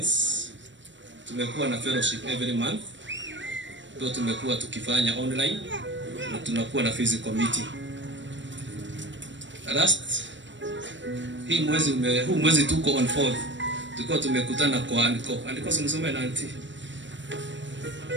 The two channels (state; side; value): late; left; 0.54 ms